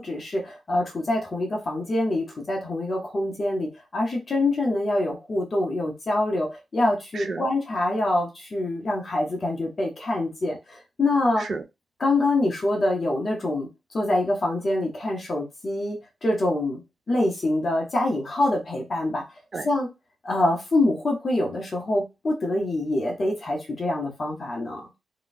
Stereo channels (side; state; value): both; normal; correlation 0.89